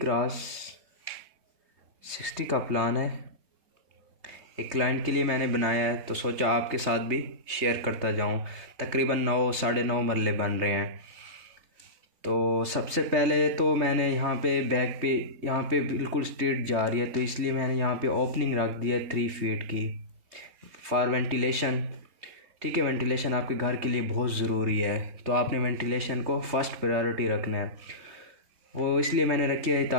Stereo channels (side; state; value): left; late; 3.2 ms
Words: का प्लान है। एक क्लाइंट के लिए मैंने बनाया है तो सोचा आपके साथ भी शेयर करता जाऊँ। तकरीबन 9 साढ़े 9 मरले बन रहे हैं। तो सबसे पहले तो मैंने यहाँ पे बैक पे यहाँ पे बिल्कुल स्ट्रेट जा रही है तो इसलिए मैंने यहाँ पे ओपनिंग रख दी है 3 फीट की फॉर वेंटिलेशन। ठीक है, वेंटिलेशन आपके घर के लिए बहुत ज़रूरी है तो आपने वेंटिलेशन को फर्स्ट प्रायोरिटी रखना है। वो इसलिए मैंने रखी है